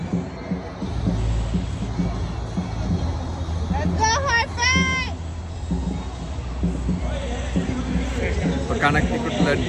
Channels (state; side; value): identical; both; correlation 1.00